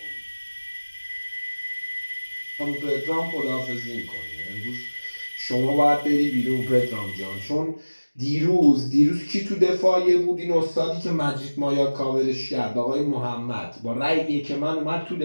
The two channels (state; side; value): inverted; both; correlation -1.00